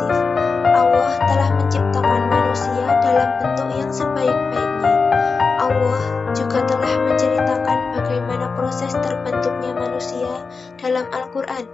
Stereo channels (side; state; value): right; quieter; 4.6 dB